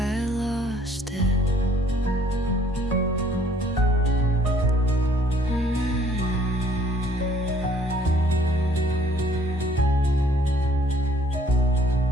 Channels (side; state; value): both; normal; correlation 0.60